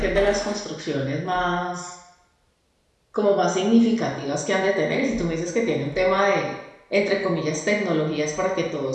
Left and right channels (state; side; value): identical; both; correlation 1.00